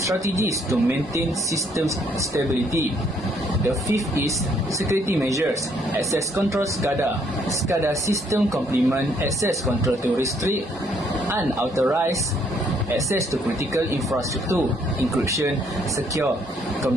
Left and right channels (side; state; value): both; normal; correlation 0.68